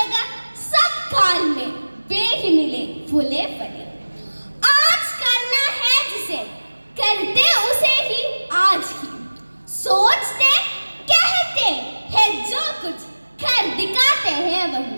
सब काल में वे ही मिले फूले फले। आज करना है जिसे करते उसे ही आज ही, सोचते कहते हैं जो कुछ कर दिखाते हैं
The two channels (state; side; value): inverted; both; correlation -1.00